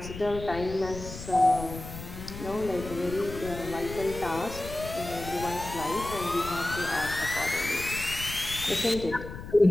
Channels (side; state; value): left; noise; rumble, 11 dB below the sound